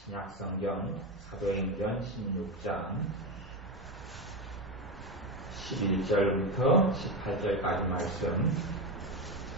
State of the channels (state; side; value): normal; both; correlation 0.15